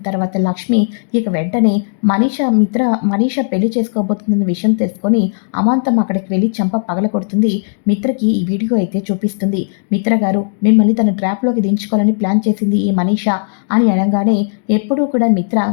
తర్వాత లక్ష్మి ఇక వెంటనే మనీషా పెళ్లి చేసుకోబోతుందన్న విషయం తెలుసుకొని అమాంతం అక్కడికి వెళ్ళి చంప పగల కొడుతుంది. మిత్రకి ఈ వీడియో అయితే చూపిస్తుంది. మిత్ర గారు, మిమ్మల్ని తన ట్రాప్లోకి దించుకోవాలని ప్లాన్ చేసింది ఈ మనీషా అని అనగానే, ఎప్పుడూ కూడా మిత్ర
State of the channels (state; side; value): silent; right; digital silence